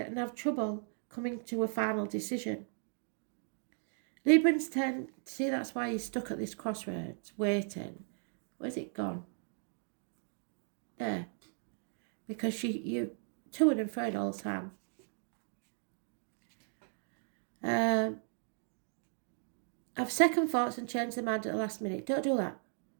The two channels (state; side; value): silent; left; 54 dB below the other